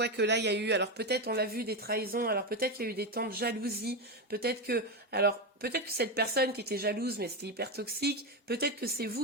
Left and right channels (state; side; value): normal; both; correlation 0.12